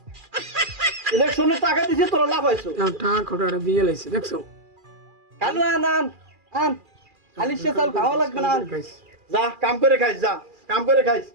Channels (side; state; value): left; late; 2.4 ms